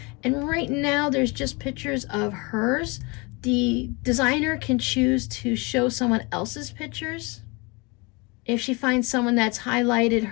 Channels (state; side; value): quieter; right; 28.0 dB